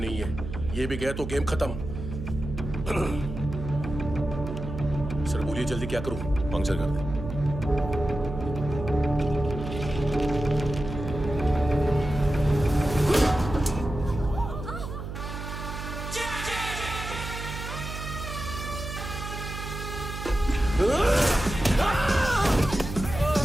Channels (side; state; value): right; noise; hum, 7 dB below the sound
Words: है। ये भी गया तो गेम खत्म। सर बोलिए जल्दी क्या करूं? पंक्चर कर दे।